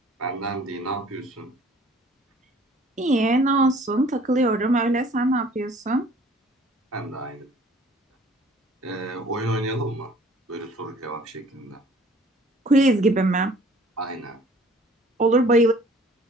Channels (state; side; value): normal; both; correlation 0.53